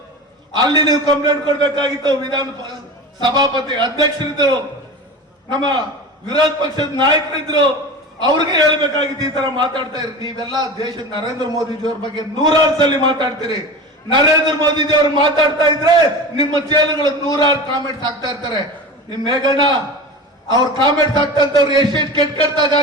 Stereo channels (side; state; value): both; normal; correlation 0.30